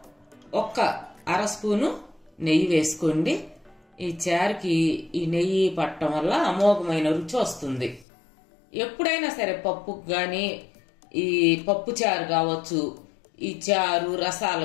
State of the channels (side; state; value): right; drops out; at 8.1 s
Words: 1/2 స్పూను నెయ్యి వేసుకోండి. ఈ చారుకి ఈ నెయ్యి పట్టడం వల్ల అమోఘమైన రుచి వస్తుంది. ఎప్పుడైనా సరే పప్పుకు కానీ, ఈ పప్పు చారు కావచ్చు, ఈ చారు